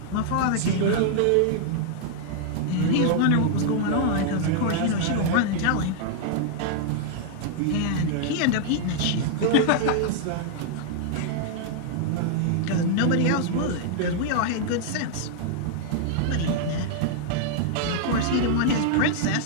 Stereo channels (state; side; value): different; both; correlation -0.01